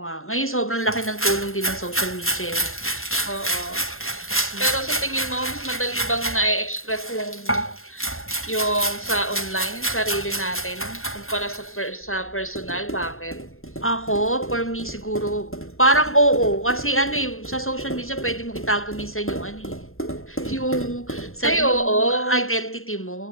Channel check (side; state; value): right; late; 0.61 ms